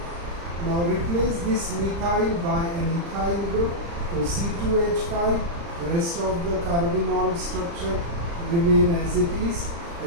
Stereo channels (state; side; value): late; left; 35 ms